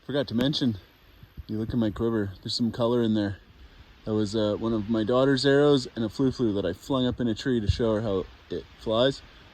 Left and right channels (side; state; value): both; identical; correlation 1.00